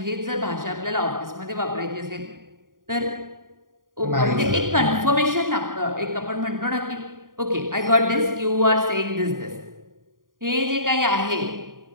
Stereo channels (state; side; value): late; left; 0.90 ms